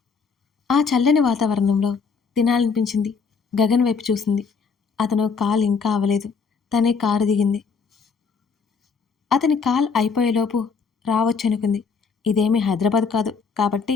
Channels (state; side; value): quieter; right; 5.4 dB